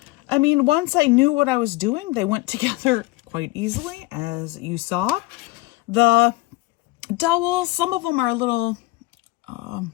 I mean, once I knew what I was doing, they went together quite easily, as you saw. The dowels, some of them are a little kind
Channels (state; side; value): quieter; right; 20.4 dB